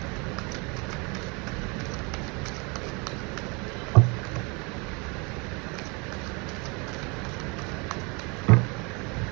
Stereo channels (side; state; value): left; quieter; 29.7 dB